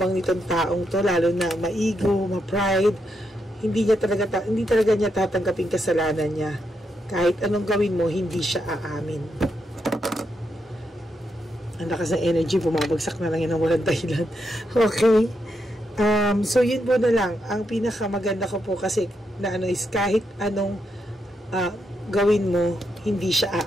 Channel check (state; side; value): normal; both; correlation 0.82